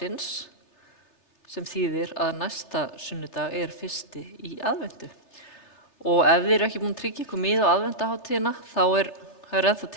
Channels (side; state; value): right; late; 3.3 ms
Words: sem þýðir að næsta sunnudag fyrsti í aðventu. Og ef þið eru ekki búin að tryggja ykkur miða á aðventaháttíðina þá er ennþá